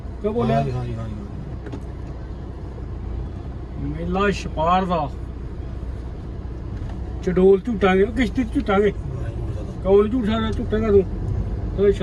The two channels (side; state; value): both; identical; correlation 1.00